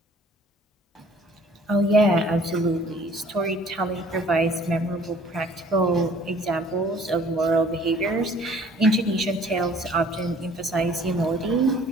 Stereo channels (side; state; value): both; normal; correlation 0.55